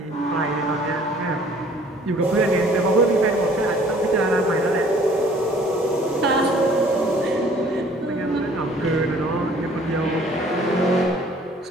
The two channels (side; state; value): both; normal; correlation 0.55